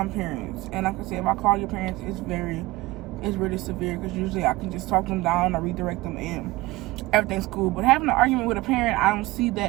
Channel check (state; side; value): quieter; left; 20.2 dB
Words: parents. And like I said, if I call your parents, it's really severe, because usually I can just talk them down or redirect them, and everything's cool. But having an argument with a parent, I don't see